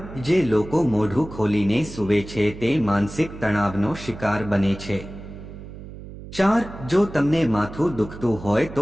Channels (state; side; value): noise; right; hum, 14 dB below the sound